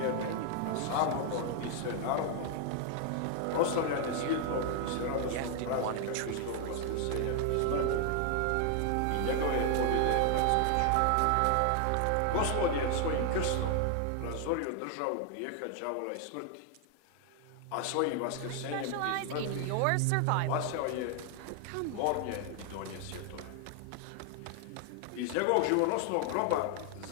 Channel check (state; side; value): different; both; correlation 0.00